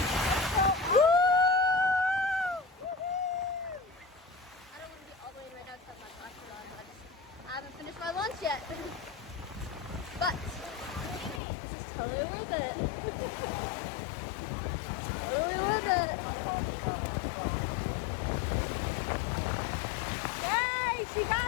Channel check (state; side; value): drops out; right; at 11.4 s